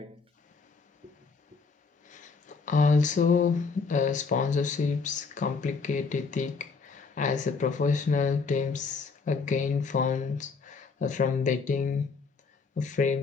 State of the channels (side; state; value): right; quieter; 4.8 dB